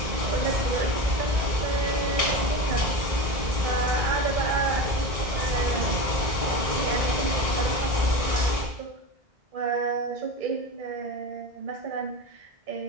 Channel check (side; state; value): left; late; 1.8 ms